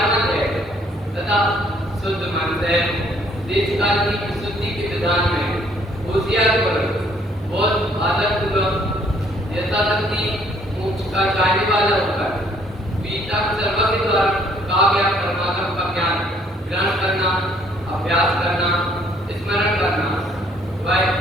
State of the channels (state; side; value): normal; both; correlation 0.64